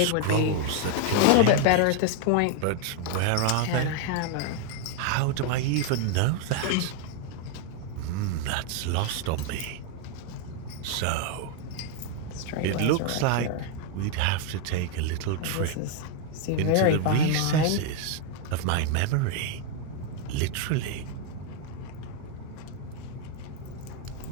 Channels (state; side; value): different; both; correlation 0.01